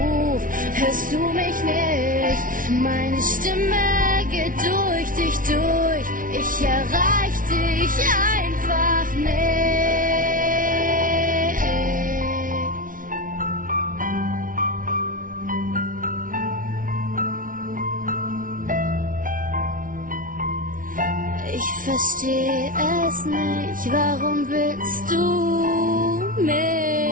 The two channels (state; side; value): late; left; 0.39 ms